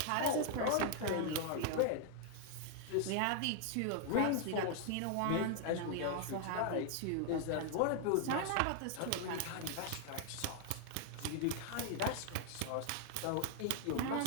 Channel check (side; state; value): both; different; correlation 0.00